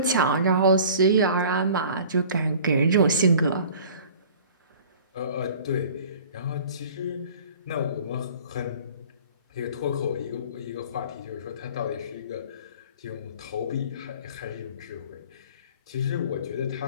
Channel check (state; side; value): inverted; both; correlation -0.46